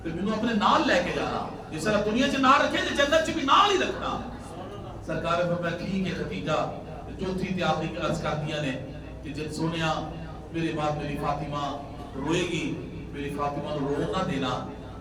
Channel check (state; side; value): identical; both; correlation 1.00